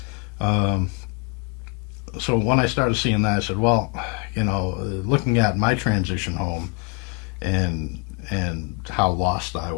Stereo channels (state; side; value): quieter; right; 30.7 dB